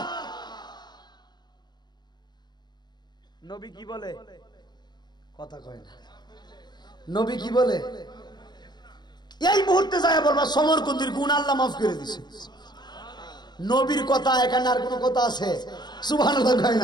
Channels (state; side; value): late; right; 0.21 ms